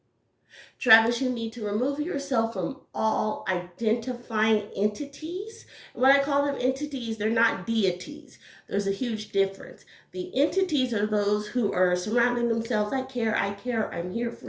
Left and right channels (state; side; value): identical; both; correlation 1.00